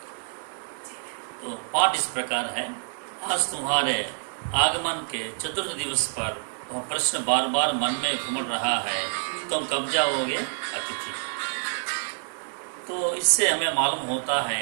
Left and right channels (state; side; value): silent; left; digital silence